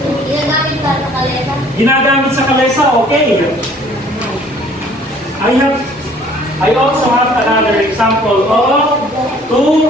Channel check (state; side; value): normal; both; correlation 0.56